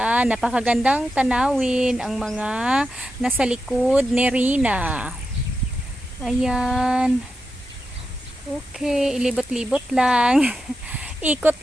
napakagandang tanawin ang mga nasa likod ni Rina. Ayan. Okay, ilibot-libot lang.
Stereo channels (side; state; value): both; normal; correlation 0.89